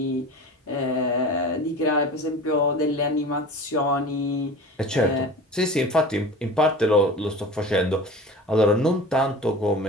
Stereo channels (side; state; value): both; normal; correlation 0.36